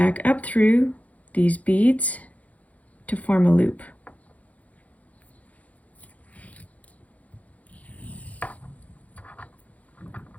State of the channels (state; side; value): late; right; 0.070 ms